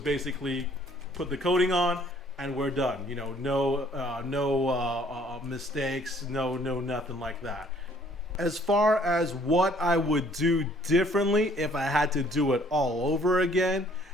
put the coating on and we're done. You know, no mistakes, no nothing like that. As far as what I would do differently if I had to do it all over again,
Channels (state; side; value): normal; both; correlation 0.60